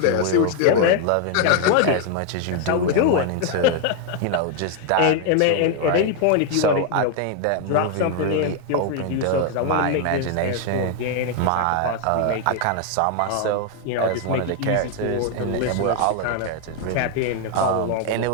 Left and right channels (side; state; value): both; different; correlation 0.00